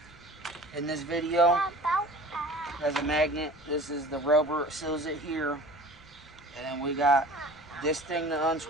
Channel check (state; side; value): noise; right; rumble, 27 dB below the sound